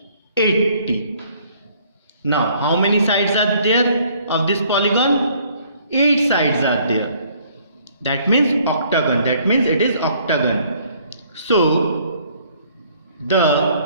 Now, how many sides are there of this polygon? 8 sides are there. That means octagon. That means it is octagon. So,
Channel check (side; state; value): both; inverted; correlation -0.61